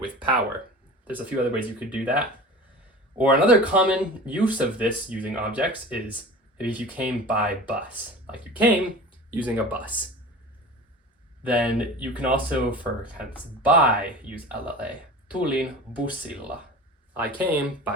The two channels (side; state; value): both; normal; correlation 0.36